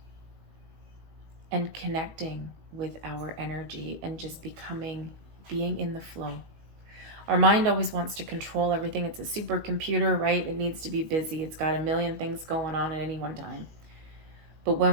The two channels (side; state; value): left; late; 18 ms